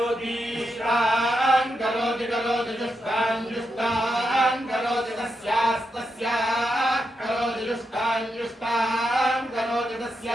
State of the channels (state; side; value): normal; both; correlation 0.85